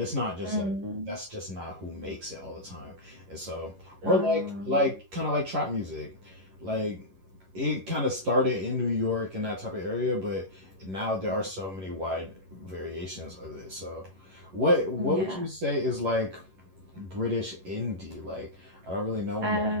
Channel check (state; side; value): late; left; 11 ms